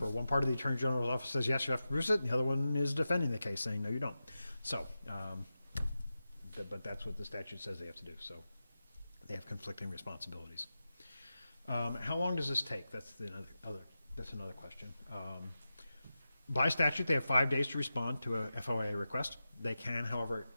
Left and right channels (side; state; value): both; inverted; correlation -0.92